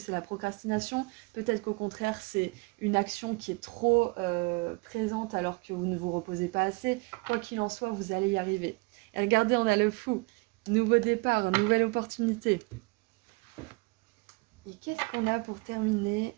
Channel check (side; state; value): left; quieter; 27.5 dB